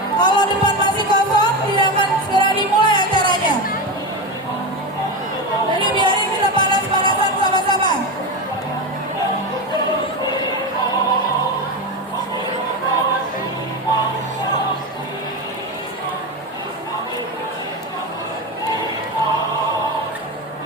Kalau depan masih kosong, tidak akan segera dimulai acaranya. Jadi biarin kita panas-panasan sama-sama.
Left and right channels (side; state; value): both; normal; correlation 0.18